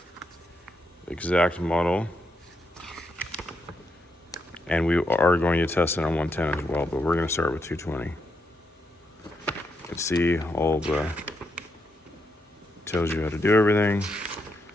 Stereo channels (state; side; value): normal; both; correlation 0.81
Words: exact model, and we are going to test it on 110 as well, but we're going to start with 220. You can see all the, tells you how to do everything,